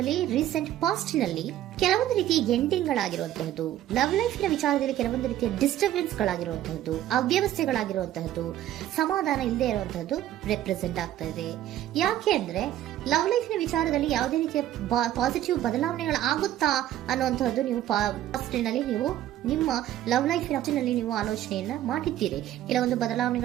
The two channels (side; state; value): left; quieter; 12.7 dB